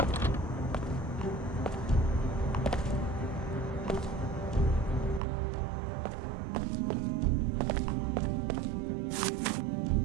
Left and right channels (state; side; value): drops out; left; at 5.2 s